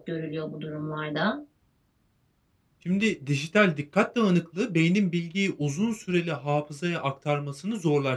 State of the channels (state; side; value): identical; both; correlation 1.00